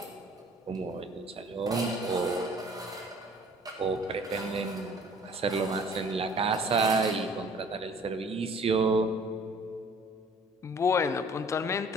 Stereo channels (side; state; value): both; normal; correlation 0.53